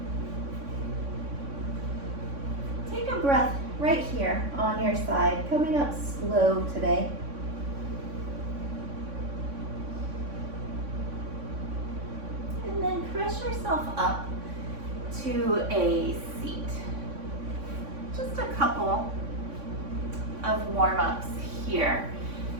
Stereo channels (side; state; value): left; late; 3.6 ms